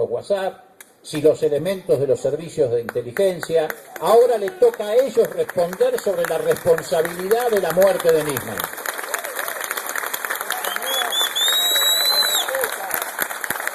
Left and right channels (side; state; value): both; identical; correlation 1.00